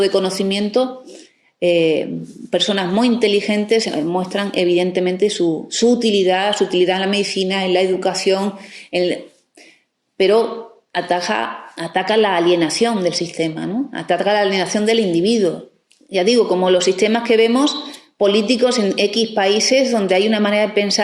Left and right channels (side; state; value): both; identical; correlation 1.00